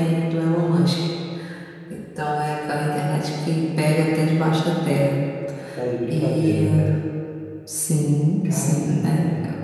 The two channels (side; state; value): both; identical; correlation 1.00